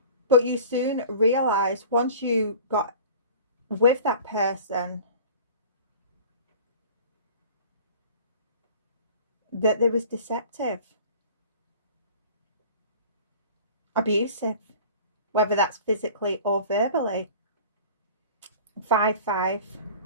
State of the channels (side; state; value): both; inverted; correlation -0.42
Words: But you soon realized, once you got with that person, that they was deceptive, abusive, whether that's physically or verbally. 5-5.